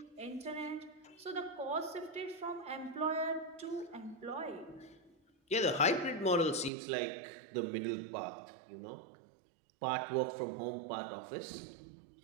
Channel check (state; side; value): drops out; left; at 6.7 s